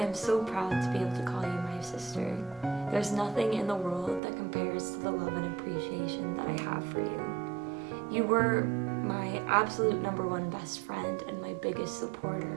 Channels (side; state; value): left; drops out; at 4.2 s